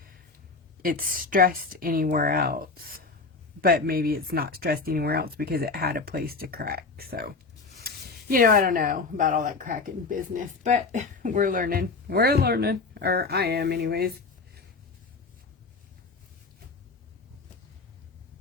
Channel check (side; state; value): right; quieter; 4.1 dB